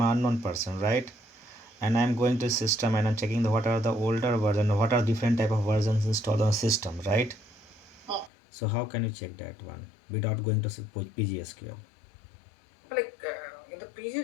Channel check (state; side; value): drops out; right; at 8.3 s